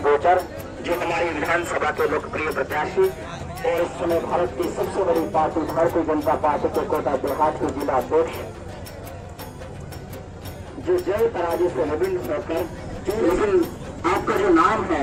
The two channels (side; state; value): both; identical; correlation 1.00